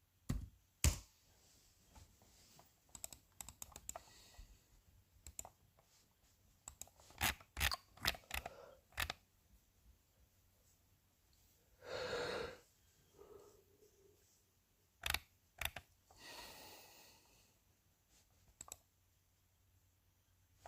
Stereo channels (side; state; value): both; identical; correlation 1.00